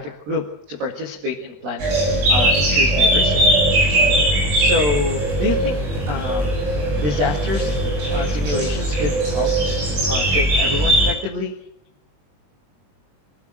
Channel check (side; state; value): left; late; 21 ms